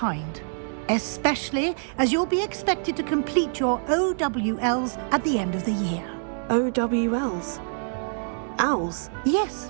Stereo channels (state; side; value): silent; left; digital silence